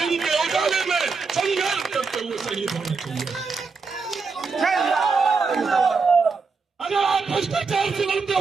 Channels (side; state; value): left; quieter; 4.7 dB